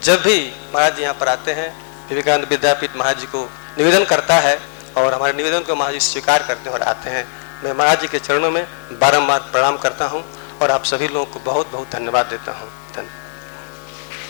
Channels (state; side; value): silent; right; digital silence